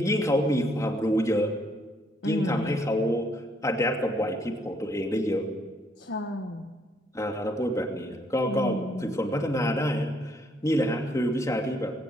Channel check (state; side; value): normal; both; correlation 0.69